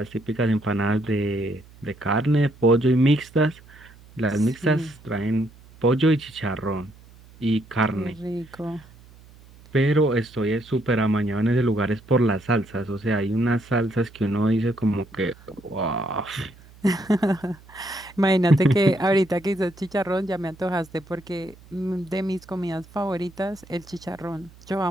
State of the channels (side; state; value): right; noise; hum, 24 dB below the sound